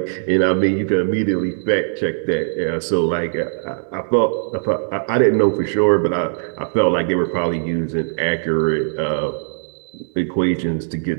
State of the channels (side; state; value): left; silent; digital silence